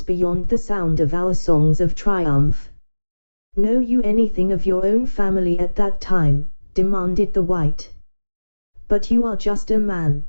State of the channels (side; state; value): both; inverted; correlation -1.00